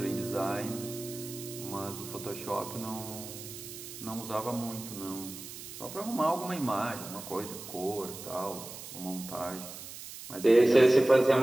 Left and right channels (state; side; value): noise; right; hiss, 12 dB below the sound